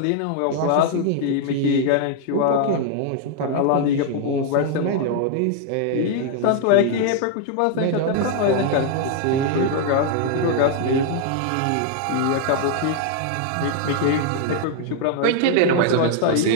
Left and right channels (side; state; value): both; different; correlation 0.00